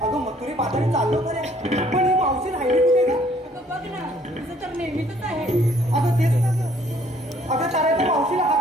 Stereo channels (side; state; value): both; normal; correlation 0.61